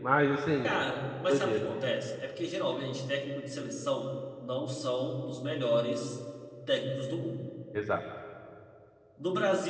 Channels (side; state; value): both; identical; correlation 1.00